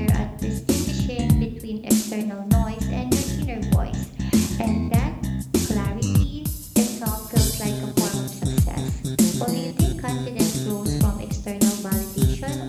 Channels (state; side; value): identical; both; correlation 1.00